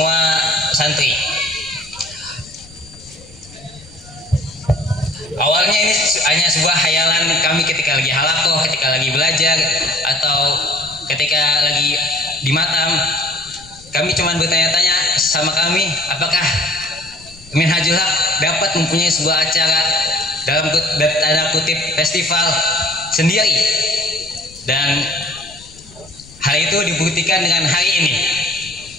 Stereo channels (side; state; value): left; noise; rumble, 23 dB below the sound